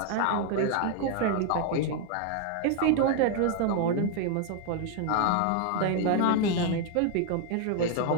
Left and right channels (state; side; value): different; both; correlation 0.00